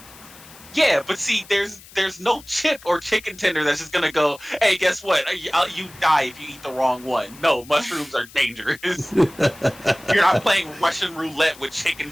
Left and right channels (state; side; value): noise; left; hiss, 21 dB below the sound